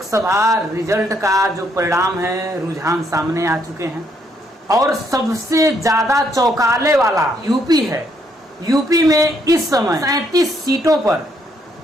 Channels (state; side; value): normal; both; correlation 0.72